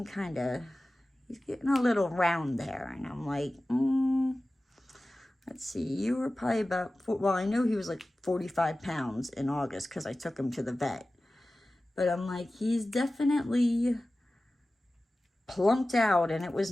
a little round there. And I'm like, let's see, you were probably about, well, I know he was like 45 pounds in August because I took him to the vet. But I'm like, he's definitely plumped out, and it was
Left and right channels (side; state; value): both; normal; correlation 0.96